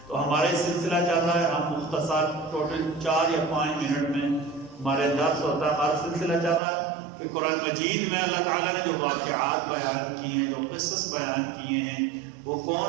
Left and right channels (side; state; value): left; drops out; at 6.6 s